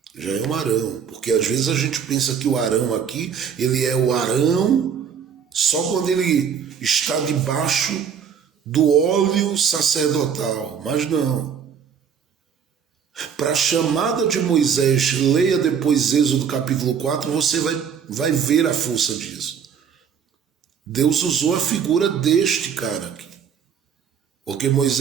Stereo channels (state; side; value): quieter; left; 7.5 dB